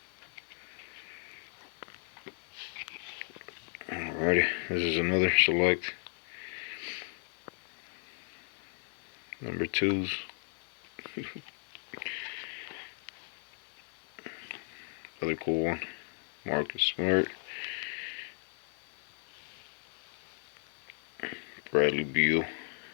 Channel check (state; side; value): silent; right; 54 dB below the other